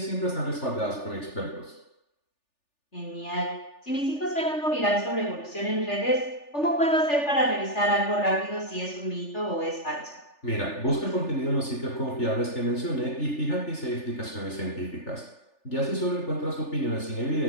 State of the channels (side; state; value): right; late; 3.4 ms